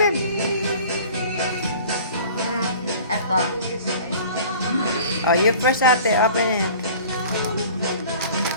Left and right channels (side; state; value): both; inverted; correlation -0.45